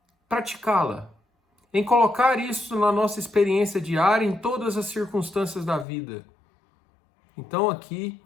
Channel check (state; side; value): drops out; right; at 5.9 s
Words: praticá-la? Em colocar isso na nossa experiência diária, em todas as circunstâncias da vida? Então aqui